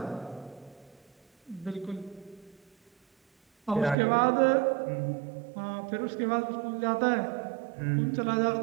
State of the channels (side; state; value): left; drops out; at 4.0 s